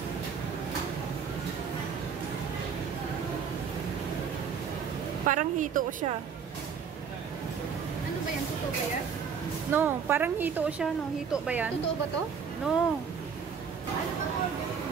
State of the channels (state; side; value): quieter; left; 6.6 dB